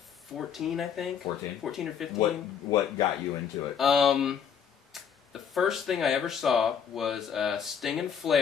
I think. 14? 14 or 15. What got you into it? The first thing I ever saw was Sting and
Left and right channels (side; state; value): right; quieter; 7.6 dB